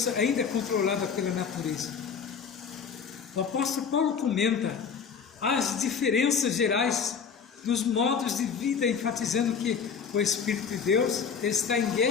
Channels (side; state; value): right; quieter; 6.4 dB